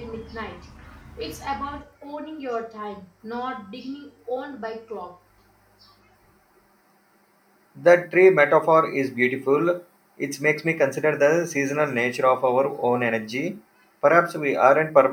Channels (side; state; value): both; identical; correlation 1.00